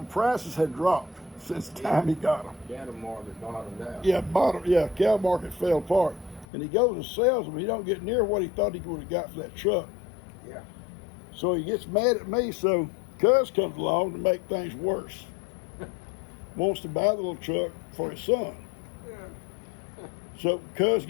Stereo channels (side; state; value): right; drops out; at 6.5 s